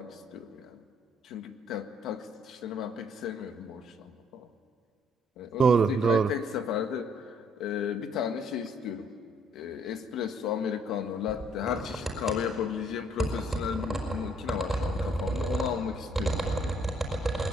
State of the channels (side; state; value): both; normal; correlation 0.65